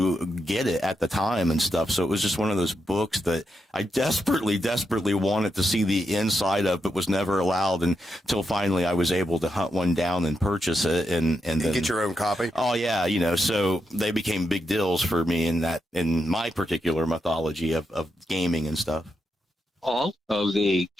get it at the time and stuff. So it was just one of those books that I desperately wanted to see the inside of, but was never allowed until finally I was able to hunt one down and purchase it. And then get your own copy. Oh yeah. So they became big deals for me in my particular mythology of gaming and stuff. All of the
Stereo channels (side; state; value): both; normal; correlation 0.84